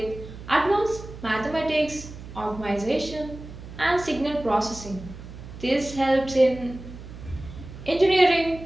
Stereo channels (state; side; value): noise; right; hum, 14 dB below the sound